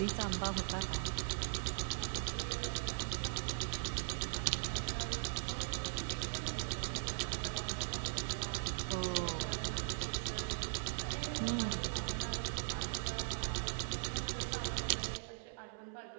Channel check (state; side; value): silent; left; 51 dB below the other